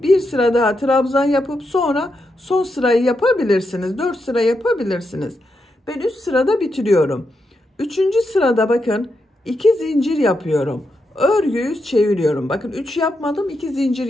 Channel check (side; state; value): both; normal; correlation 0.84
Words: bir sıra daha trabzan yapıp sonra son sırayı yapabilirsiniz. 4 sıra yapabilirsiniz. Ben 3 sırada bitiriyorum. Üçüncü sırada bakın 2 zincir yapıyorum. Örgüyü çeviriyorum. Bakın 3 yapmadım, 2 zincir